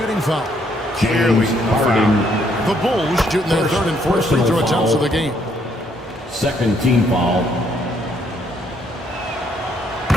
foul. Clearly foul. The Bulls shooting their third and fourth free throw attempts of the game. Second team foul.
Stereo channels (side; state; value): both; normal; correlation 0.70